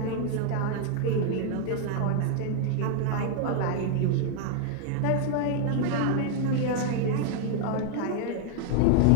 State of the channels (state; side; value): different; both; correlation 0.00